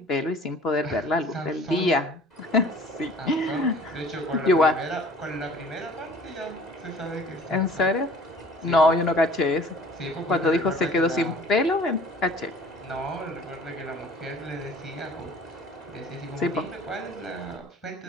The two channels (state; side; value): normal; both; correlation 0.49